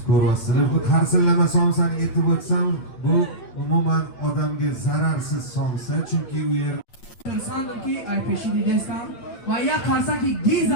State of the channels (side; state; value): right; late; 8.4 ms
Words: ko'ryapsizlar. Bu qarsillama somsani aytib o'tsam, bu umuman odamga zararsiz somsa, chunki u yer insandirki aypeshi degaysam va ya qarsaki giz